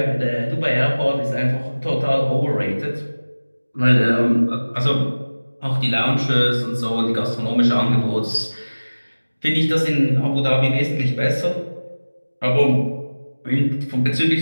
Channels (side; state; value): both; inverted; correlation -1.00